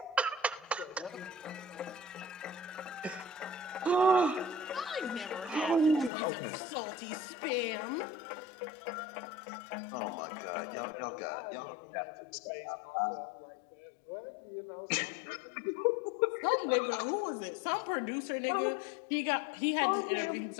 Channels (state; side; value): drops out; right; at 6.1 s